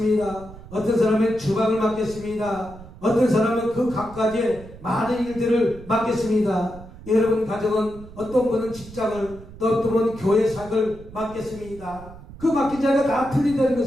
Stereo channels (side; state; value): right; noise; rumble, 17 dB below the sound